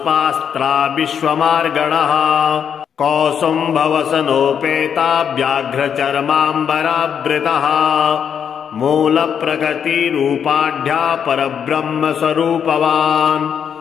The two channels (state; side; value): quieter; right; 7.8 dB